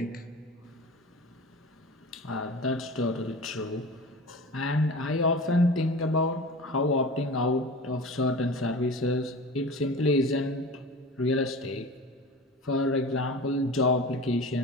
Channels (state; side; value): normal; both; correlation 0.35